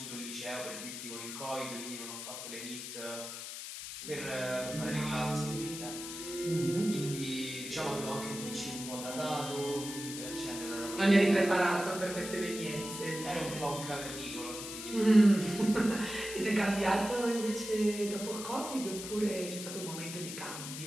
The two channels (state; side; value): noise; left; hiss, 8 dB below the sound